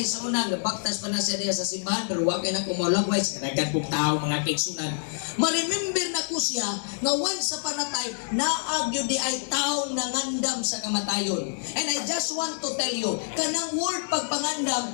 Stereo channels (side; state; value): right; silent; digital silence